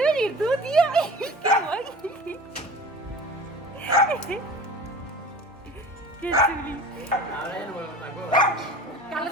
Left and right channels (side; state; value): both; normal; correlation 0.38